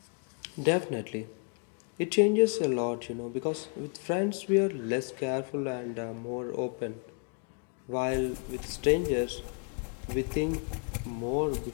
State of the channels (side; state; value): right; quieter; 39.0 dB